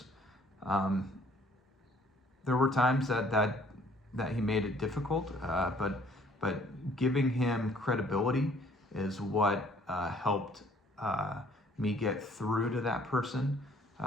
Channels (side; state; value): both; normal; correlation 0.59